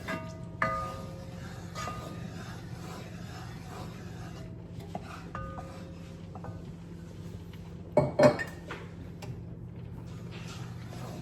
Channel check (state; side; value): identical; both; correlation 1.00